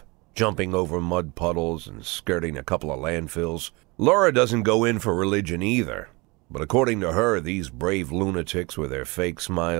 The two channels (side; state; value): left; quieter; 26.1 dB